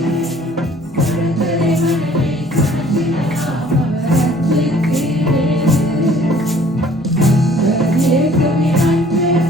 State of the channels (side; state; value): both; normal; correlation 0.55